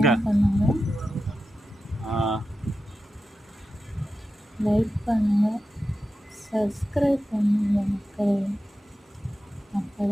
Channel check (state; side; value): normal; both; correlation 0.91